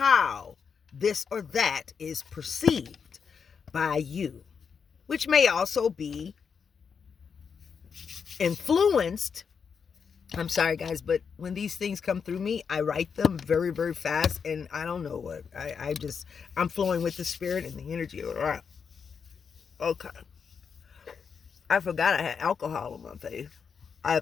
this or that is perceived by you, which may also be influenced. I'm sorry, guys, but when these things come through me, I write them very, very fast, and I don't know what. I'm flowing with the spirit and the energy. Okay. I forgot I had alcohol on my face. I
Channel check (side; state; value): right; quieter; 6.3 dB